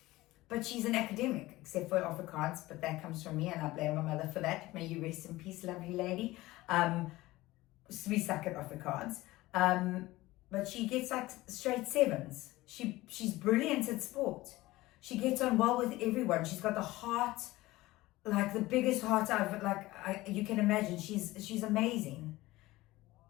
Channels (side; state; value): right; quieter; 18.6 dB